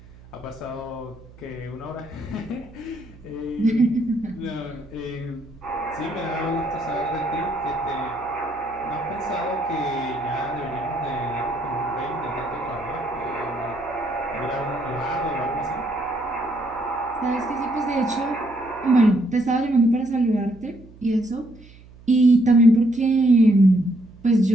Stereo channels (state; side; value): noise; right; hum, 22 dB below the sound